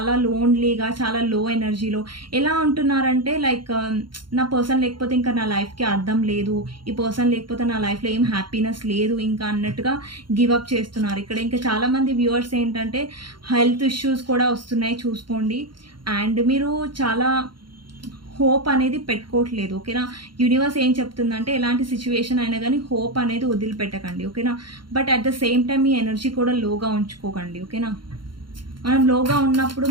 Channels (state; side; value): late; left; 0.72 ms